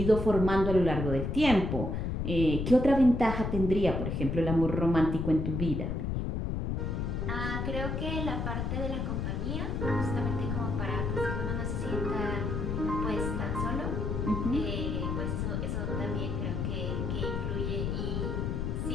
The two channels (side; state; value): left; noise; rumble, 1 dB below the sound